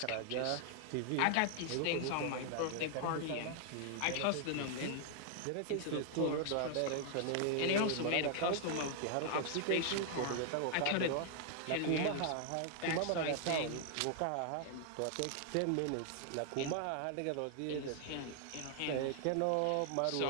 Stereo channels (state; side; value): different; both; correlation 0.00